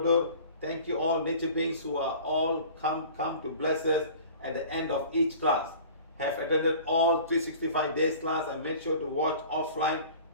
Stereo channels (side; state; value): both; inverted; correlation -0.44